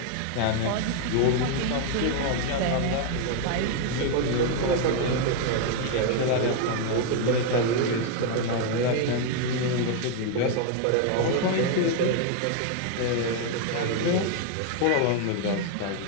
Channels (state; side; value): different; both; correlation 0.00